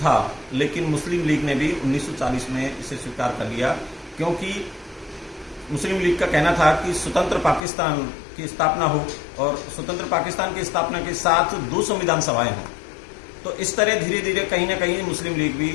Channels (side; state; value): right; drops out; at 7.6 s